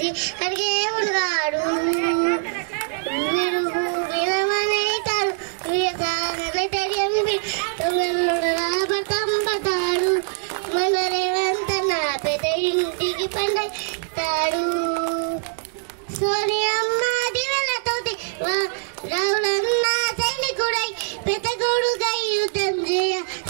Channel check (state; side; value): silent; left; digital silence